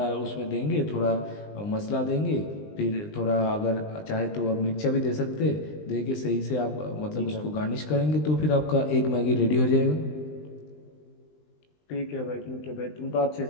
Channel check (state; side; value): late; right; 20 ms